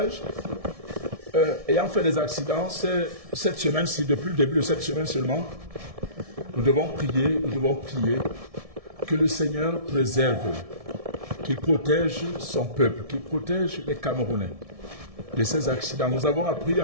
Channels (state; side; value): late; left; 1.7 ms